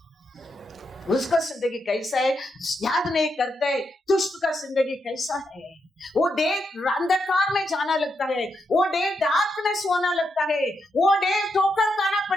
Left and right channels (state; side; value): normal; both; correlation 0.82